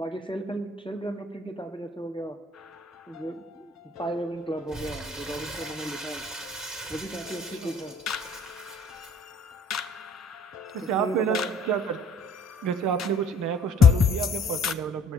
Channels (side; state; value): both; normal; correlation 0.58